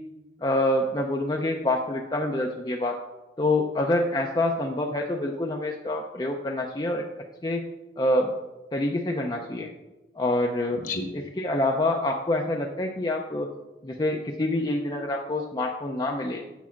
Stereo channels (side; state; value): both; normal; correlation 0.53